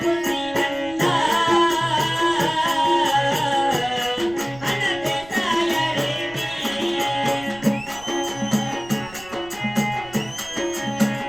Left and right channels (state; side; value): noise; right; rumble, 20 dB below the sound